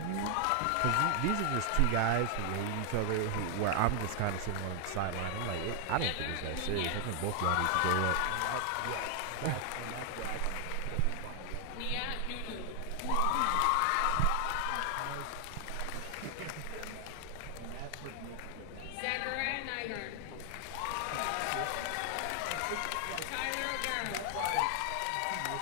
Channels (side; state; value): both; different; correlation 0.00